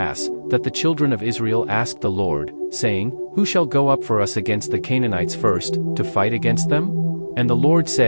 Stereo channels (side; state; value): both; inverted; correlation -1.00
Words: that the children of Israel asked the Lord, saying, Who shall go up for us against the Canaanites first, to fight against them? And the Lord